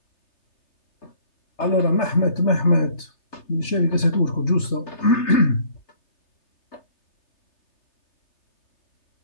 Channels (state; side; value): late; right; 3.3 ms